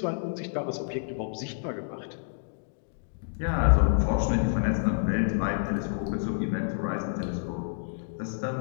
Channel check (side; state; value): right; silent; digital silence